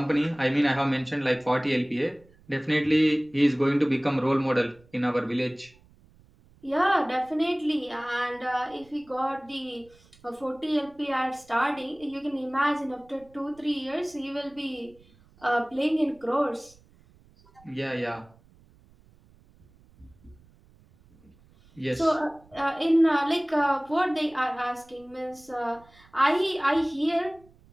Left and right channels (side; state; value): right; noise; rumble, 28 dB below the sound